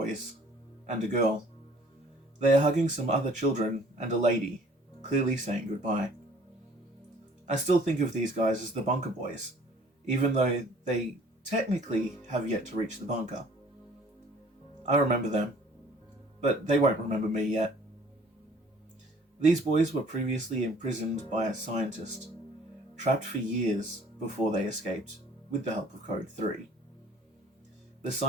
and a girl. They are hugging some other children and a lady, clearly saying goodbye. I still think of these guys as the bunker boys, even though they technically have yet to reach the bunker. I remember them, but they won't remember me yet. These boys were previously imprisoned by a scientist, trapped for years before they escaped, with the help of Code 3. The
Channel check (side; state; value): both; normal; correlation 0.54